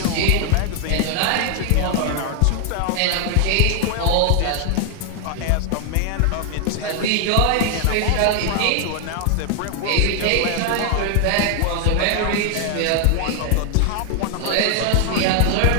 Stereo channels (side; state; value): both; different; correlation 0.00